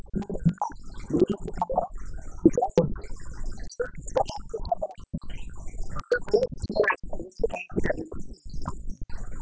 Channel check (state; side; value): identical; both; correlation 1.00